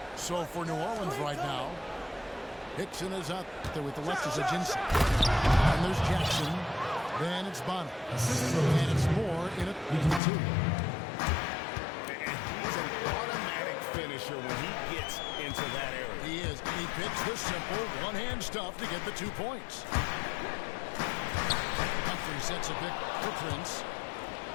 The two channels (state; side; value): drops out; right; at 10.2 s